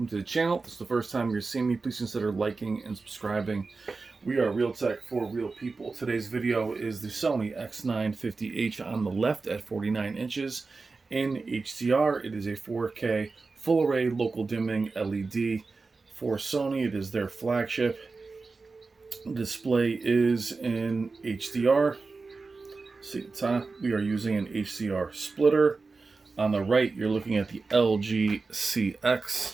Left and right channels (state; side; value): quieter; left; 4.1 dB